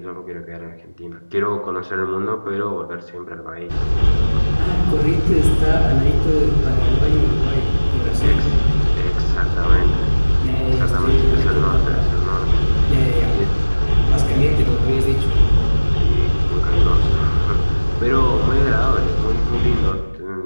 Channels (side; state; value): both; inverted; correlation -1.00